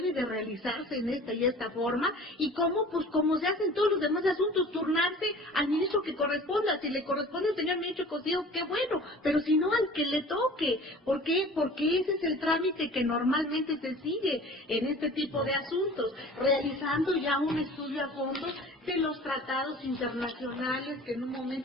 de realizarse en esta y esta forma, y cómo, pues como se hacen todos los demás asuntos, turnarse al ministro que corresponda. Si le corresponde al señor ministro Cosío, qué bueno, pero si no, al que le toque. ¿Por qué? Porque ese es el trámite que normalmente se sigue en este tipo de asuntos, realizando ya un estudio a fondo de los tratados internacionales que en un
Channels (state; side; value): normal; both; correlation 0.44